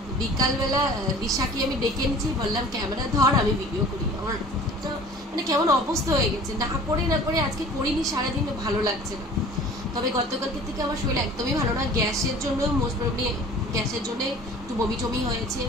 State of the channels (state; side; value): normal; both; correlation 0.46